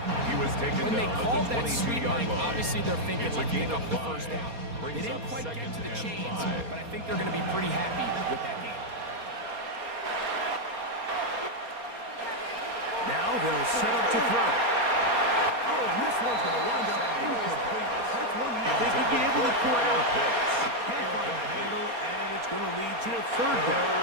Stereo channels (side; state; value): left; late; 4.3 ms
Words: He was taken When they down called at that the sweep, 22-yard Mike, line. obviously they're thinking, It's a let's gain pick of up the 5. first down. They Brings didn't up quite get second to the and chains, 5. but I think they're going to be pretty happy with that game. Now they'll set up to throw. Oh, and this one's going to wind up incomplete. That's one you think he'd be able to pull out. Can't find the handle, and it's going to lead to a third down.